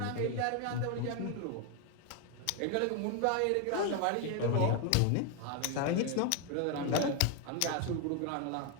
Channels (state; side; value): different; both; correlation 0.01